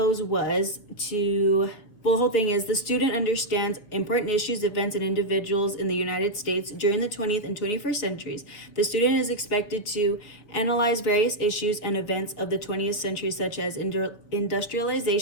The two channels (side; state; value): right; late; 4.6 ms